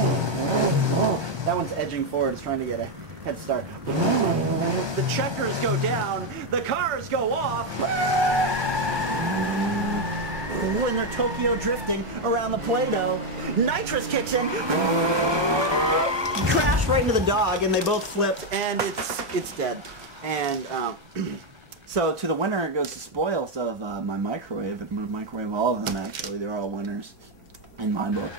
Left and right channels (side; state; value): left; late; 1.2 ms